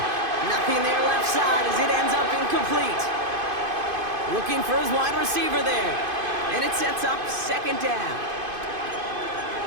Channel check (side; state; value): left; late; 2.5 ms